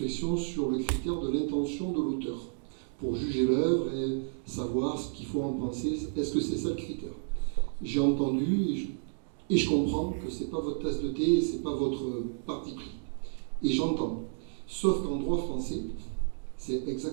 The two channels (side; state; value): left; silent; digital silence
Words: sur le critère de l'intention de l'auteur pour juger l'œuvre et savoir ce qu'il faut en penser. Est-ce que c'est ça le critère? J'ai entendu et je comprends que ce n'est pas votre tasse de thé et ce n'est pas votre parti pris. Et j'entends. Sauf qu'en droit français, c'est